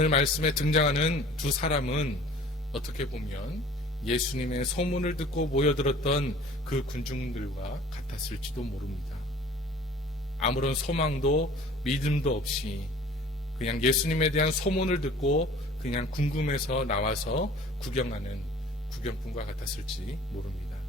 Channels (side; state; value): both; normal; correlation 0.48